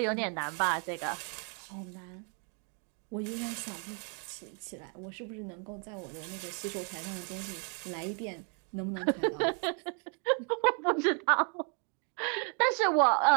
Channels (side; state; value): left; quieter; 40.0 dB